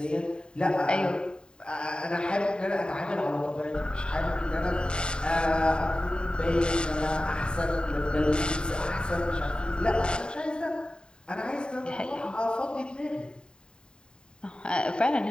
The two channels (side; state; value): right; late; 0.049 ms